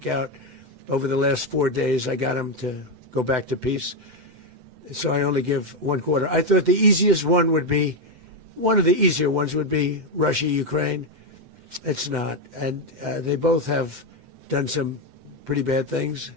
over the last 4 days. I got them to go back to peace. So I only give 1/4. I thought the easiest one would be, one of the easier ones would be Russia, Ukraine. It's not. And they both have done some pretty bad things.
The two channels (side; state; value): left; late; 7.9 ms